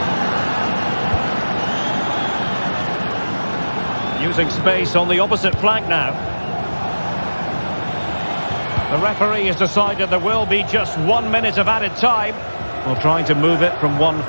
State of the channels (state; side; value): inverted; both; correlation -1.00